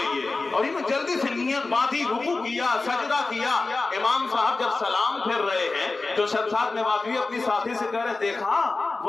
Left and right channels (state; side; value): quieter; right; 3.6 dB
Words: ये, और इन्होंने जल्दी से नियत बांधी, रुकू किया, सजदा किया। इमाम साहब जब सलाम फिर रहे हैं तो शमशाद नेवादवी अपनी साथी से कह रहे, देखा